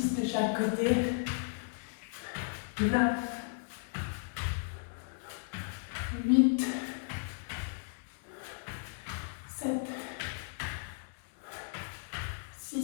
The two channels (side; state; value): right; silent; digital silence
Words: de chaque côté. 9. 8. 7.